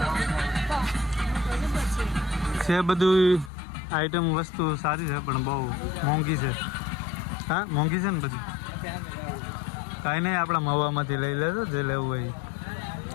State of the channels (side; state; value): right; drops out; at 3.5 s